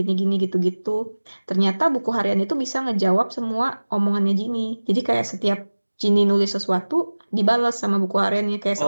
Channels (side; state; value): both; inverted; correlation -1.00